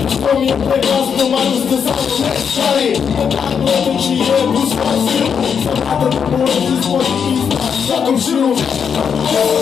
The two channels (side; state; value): right; quieter; 7.0 dB